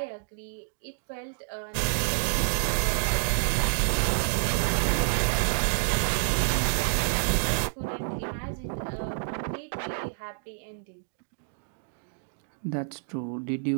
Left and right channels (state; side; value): silent; left; digital silence